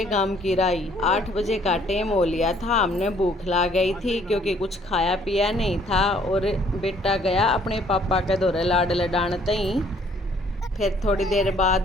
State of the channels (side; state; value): both; normal; correlation 0.62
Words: गांव की राही। 8 बजे का टाइम हो लिया था। हमने भूख ला गई थी क्योंकि कुछ खाया पिया नहीं था। और बेटा गया अपने पापा के दौरे लाड लडानते ही। फिर थोड़ी देर